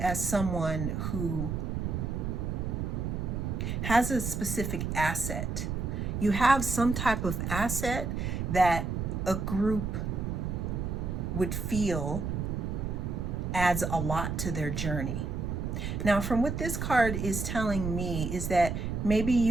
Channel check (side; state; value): right; noise; rumble, 2 dB below the sound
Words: someone who has a specific asset. You have some type of asset that a group would feel adds a lot to their journey. Now, from what this card is telling me is that maybe